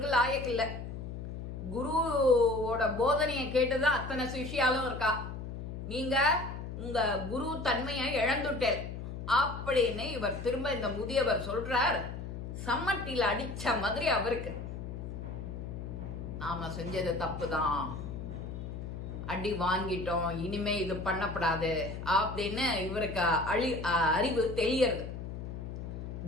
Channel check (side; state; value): left; noise; hum, 7 dB below the sound